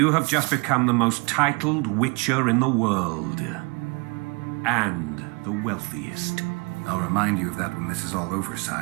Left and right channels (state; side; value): quieter; left; 30.1 dB